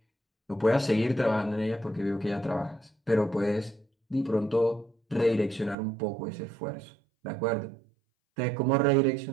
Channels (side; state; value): left; drops out; at 5.8 s